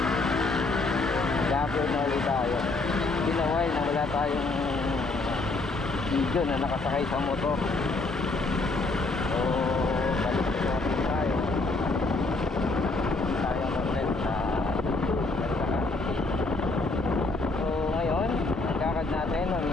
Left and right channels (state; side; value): quieter; right; 3.3 dB